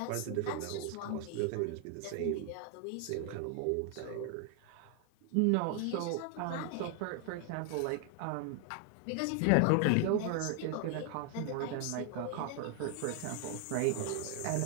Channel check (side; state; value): both; different; correlation 0.00